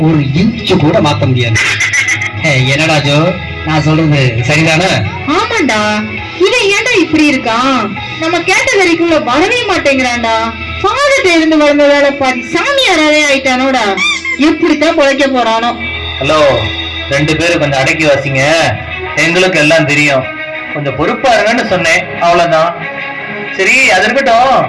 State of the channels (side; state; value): both; identical; correlation 1.00